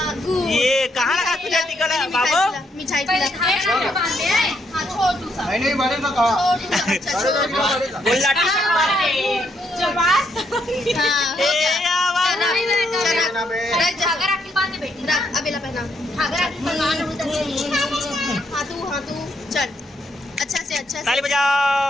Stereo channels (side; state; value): both; normal; correlation 0.75